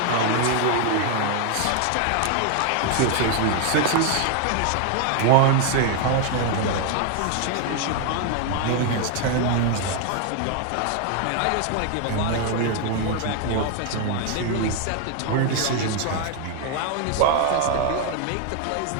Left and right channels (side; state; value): both; different; correlation 0.00